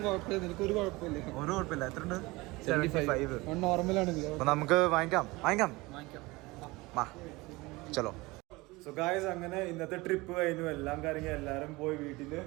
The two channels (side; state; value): left; quieter; 22.3 dB